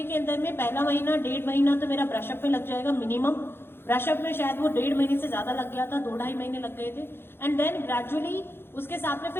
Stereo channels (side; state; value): right; late; 0.11 ms